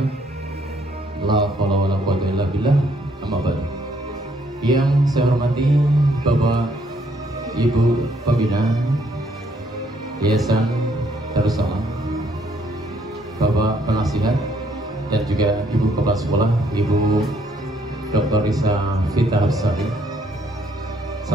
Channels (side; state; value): both; normal; correlation 0.68